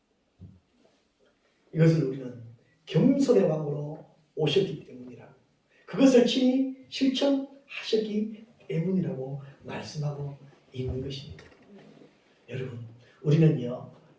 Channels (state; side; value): identical; both; correlation 1.00